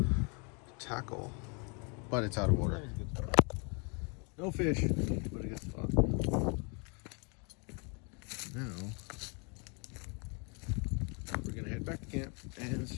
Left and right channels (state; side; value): quieter; right; 34.5 dB